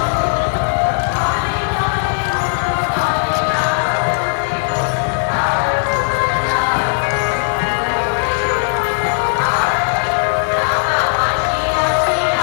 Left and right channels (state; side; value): silent; right; digital silence